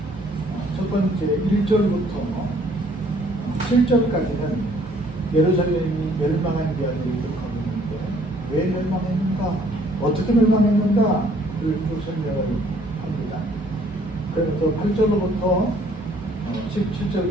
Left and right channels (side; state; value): both; normal; correlation 0.61